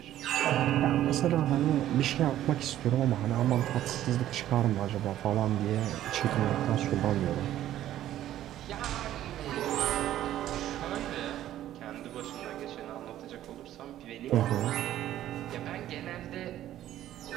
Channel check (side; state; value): left; quieter; 12.7 dB